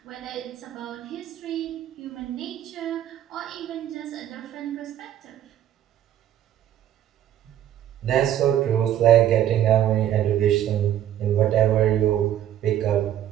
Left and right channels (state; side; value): quieter; left; 11.3 dB